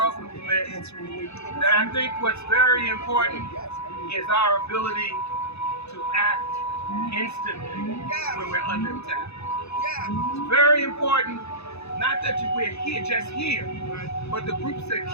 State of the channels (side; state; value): right; late; 0.80 ms